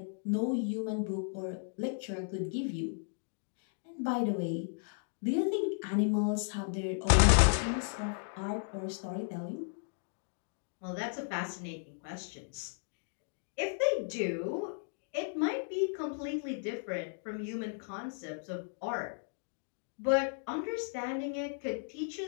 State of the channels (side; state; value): right; silent; digital silence